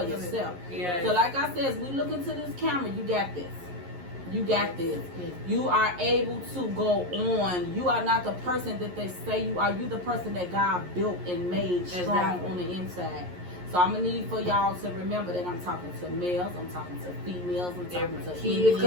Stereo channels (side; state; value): left; late; 11 ms